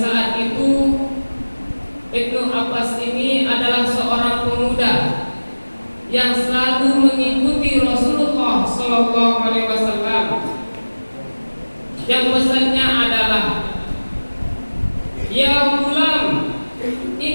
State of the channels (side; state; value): both; inverted; correlation -1.00